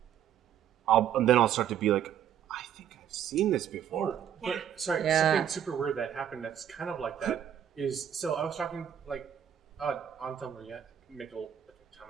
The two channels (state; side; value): quieter; left; 9.6 dB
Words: I'll start to be like, I think I've seen this before. But sorry, Yeah. something super weird that happened that's kind of like that is, so I was talking like on Tumblr, yeah, make a ton